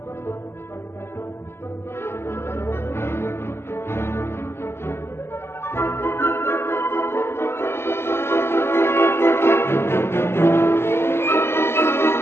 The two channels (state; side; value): late; right; 0.12 ms